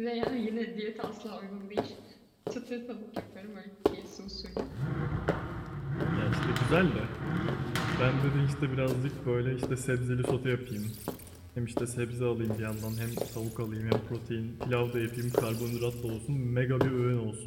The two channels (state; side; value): identical; both; correlation 1.00